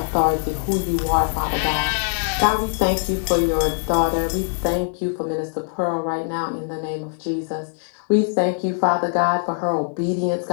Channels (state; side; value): silent; right; 64 dB below the other